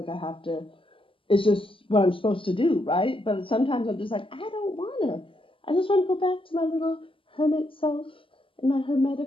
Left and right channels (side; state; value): right; late; 0.25 ms